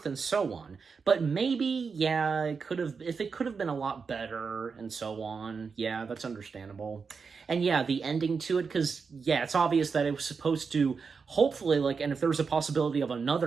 and so on. But maybe, yeah, it could have been a lot better and so on. Yeah, that's understandable. And yeah, the ending to it, because, yeah, it's obvious that it was supposed to, hopefully, like, and if there was a possibility of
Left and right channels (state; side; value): quieter; left; 5.3 dB